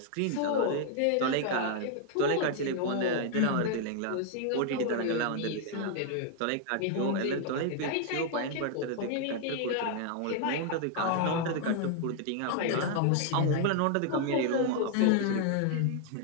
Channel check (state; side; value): different; both; correlation 0.00